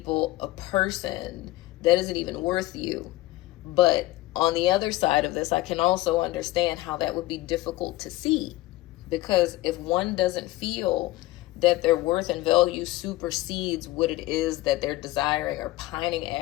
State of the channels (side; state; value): right; quieter; 17.7 dB